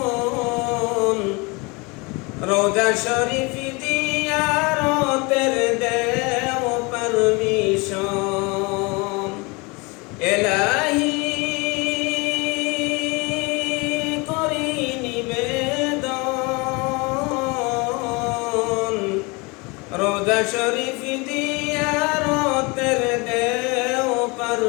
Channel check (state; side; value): quieter; right; 27.6 dB